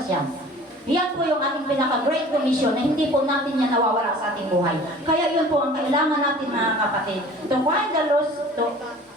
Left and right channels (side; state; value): both; normal; correlation 0.46